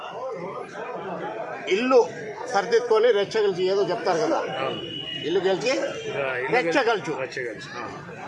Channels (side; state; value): both; identical; correlation 1.00